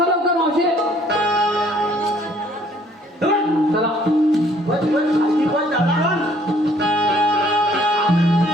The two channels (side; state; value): both; normal; correlation 0.61